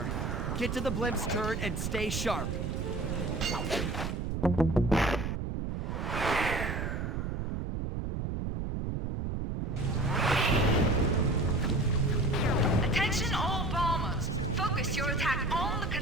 Get to the blimp's turret and stay sharp. Attention all bombers. Focus your attack on the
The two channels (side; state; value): right; noise; rumble, 2 dB below the sound